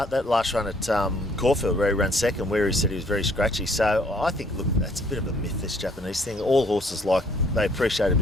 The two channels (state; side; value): normal; both; correlation 0.63